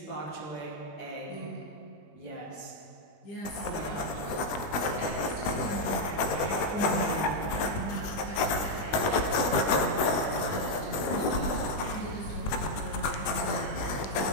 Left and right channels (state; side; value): late; right; 20 ms